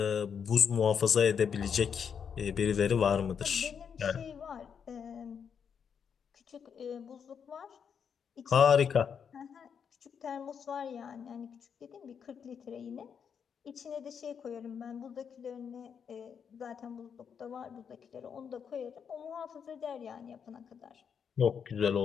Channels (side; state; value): right; quieter; 7.1 dB